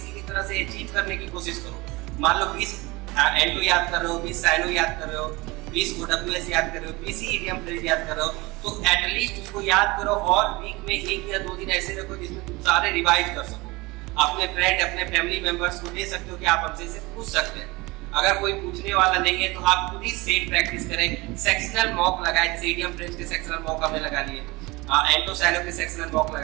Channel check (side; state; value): left; quieter; 23.1 dB